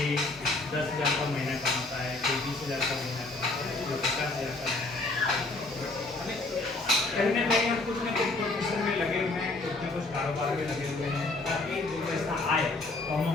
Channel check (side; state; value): right; quieter; 3.2 dB